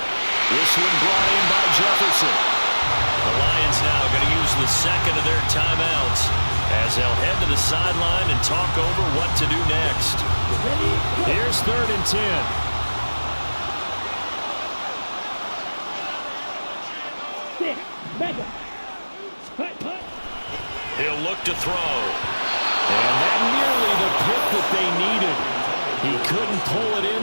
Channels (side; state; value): both; inverted; correlation -1.00